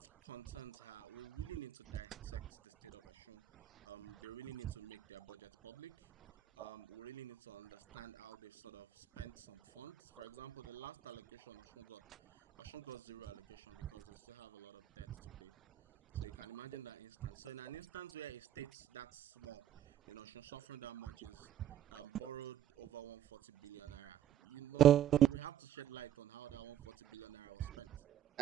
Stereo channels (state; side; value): quieter; left; 11.0 dB